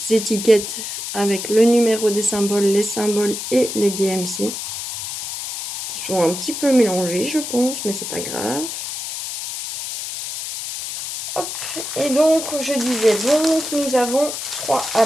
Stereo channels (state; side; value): noise; left; hiss, 6 dB below the sound